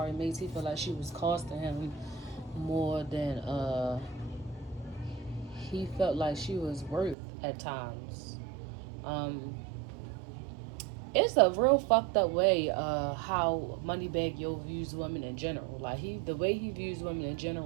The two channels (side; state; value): left; drops out; at 7.2 s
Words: made. He felt like she was costing him more than he felt like she was worth at times. It's a real fucked up way how Moneybagg Yo views women in general. Like the way he views women in